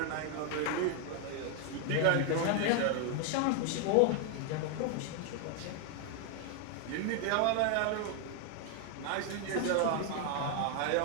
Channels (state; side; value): different; both; correlation 0.00